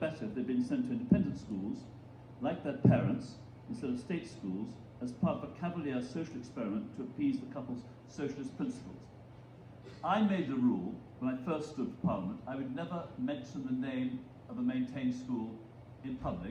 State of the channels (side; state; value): both; identical; correlation 1.00